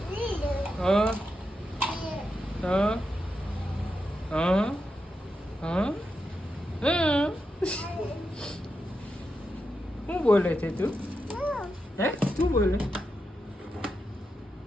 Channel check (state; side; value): normal; both; correlation 0.87